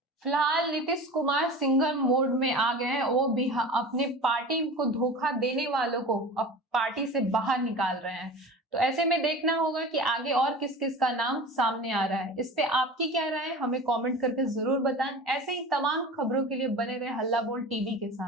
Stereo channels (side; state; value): both; normal; correlation 0.34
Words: फिलहाल नीतीश कुमार सिंगल मोड में आ गए हैं, वो भी अपने पार्टी को धोखा देने वालों को अब पार्टी से बाहर निकाल रहे हैं। तो ऐसे में देखना होगा कि आगे और किस किस का नाम सामने आ रहा है। इस पे आपकी क्या राय है, हमें कमेंट करके जरूर बताएं। ऐसे ही तमाम खबरों के लिए बने रहे हल्ला बोल टीवी के